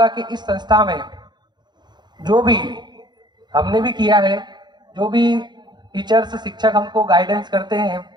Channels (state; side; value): late; left; 0.21 ms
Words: कि इस संस्था में जो भी हमने भी किया है, जो भी टीचर्स शिक्षक हमको गाइडेंस करते हैं